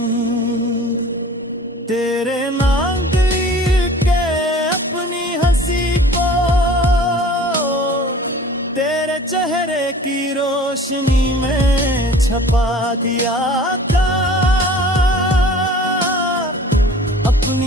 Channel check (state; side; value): normal; both; correlation 0.45